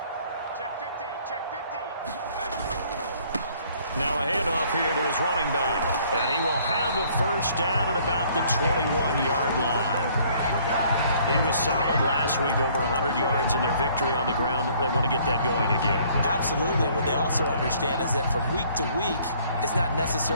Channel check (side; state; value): both; inverted; correlation -0.60